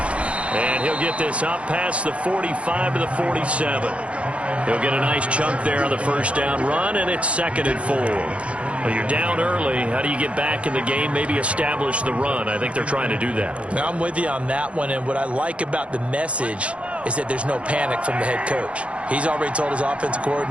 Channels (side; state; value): left; late; 0.062 ms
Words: And he'll get this up past the 45 to the 47. He'll get a nice chunk there on the first down run, and it's 2nd and 4. Well, you're down early. How do you get back in the game, maybe establish the run? I think they're trying to do that. Now, I'm with you on that one, and what I like about the message is that there's no panic from the head coach. He's already told his offensive